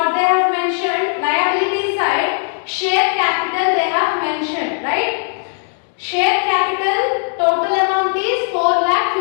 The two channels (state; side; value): silent; right; 68 dB below the other